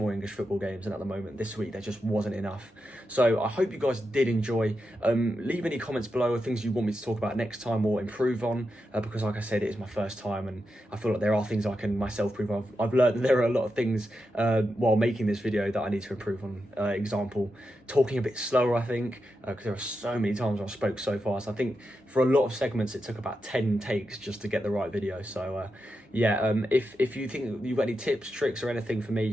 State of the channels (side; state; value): both; normal; correlation 0.87